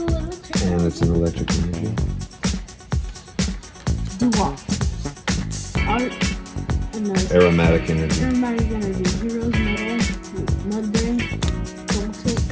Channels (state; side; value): identical; both; correlation 1.00